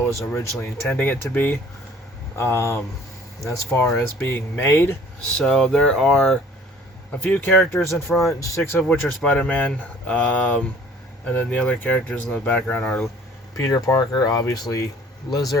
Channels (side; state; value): both; normal; correlation 0.52